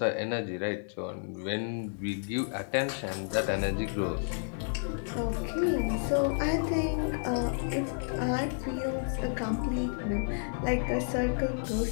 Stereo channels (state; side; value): silent; right; digital silence